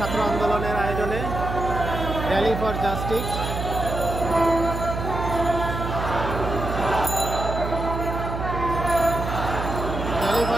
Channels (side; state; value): right; noise; hum, 4 dB below the sound